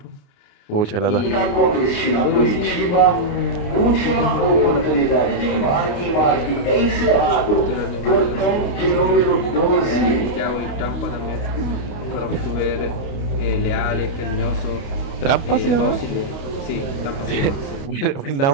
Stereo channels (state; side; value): late; right; 29 ms